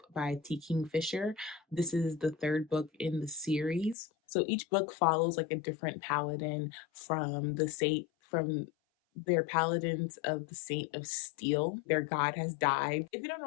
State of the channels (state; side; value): drops out; right; at 4.0 s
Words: by T. Kingfisher. This is the third book in the series. So each book follows like a different paladin from their paladins of the Saint of Steel. Their god has died. If you don't know